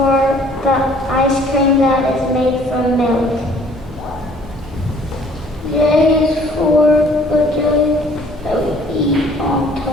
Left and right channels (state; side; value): normal; both; correlation 0.56